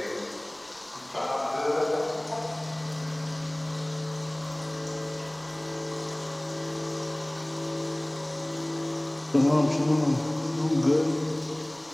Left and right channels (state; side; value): noise; right; rumble, 30 dB below the sound